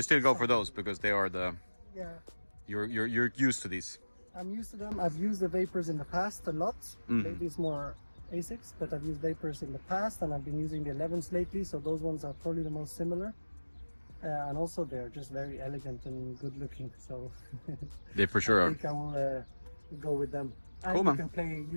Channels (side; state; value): both; inverted; correlation -1.00